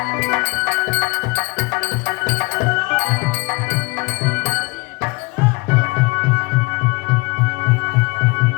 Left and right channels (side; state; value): right; quieter; 25.9 dB